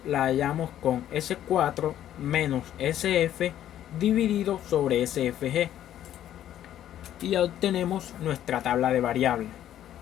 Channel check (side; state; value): right; quieter; 11.6 dB